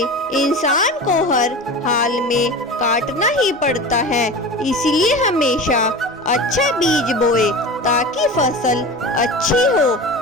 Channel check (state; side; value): normal; both; correlation 0.31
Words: इंसान को हर हाल में काटना ही पड़ता है। इसलिए हमेशा अच्छा बीज बोए ताकि फसल अच्छी हो।